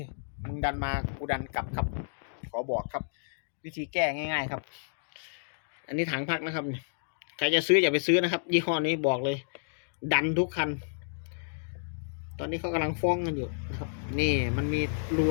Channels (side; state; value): right; silent; digital silence